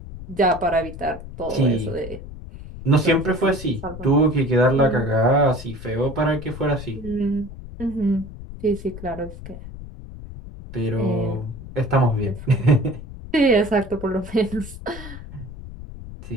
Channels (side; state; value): left; noise; rumble, 13 dB below the sound